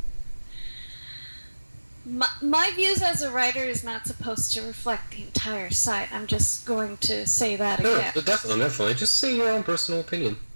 my views as a writer is not supposed to reflect the entire site. I'm just going to say that again. No, definitely. Just say your own personal opinion.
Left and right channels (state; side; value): inverted; both; correlation -1.00